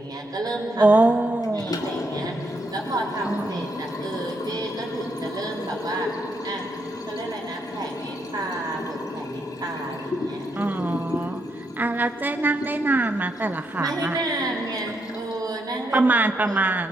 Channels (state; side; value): normal; both; correlation 0.78